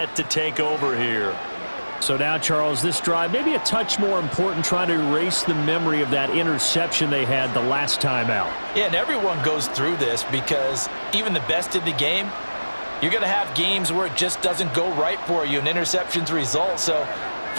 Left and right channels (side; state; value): both; inverted; correlation -1.00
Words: to take over here. So now, Charles, this drive maybe a touch more important, trying to erase the memory of that interception they had the last time out. Yeah, and everyone goes through this because even the best in the game, you're going to have games where it just doesn't go right for you and interceptions result. So,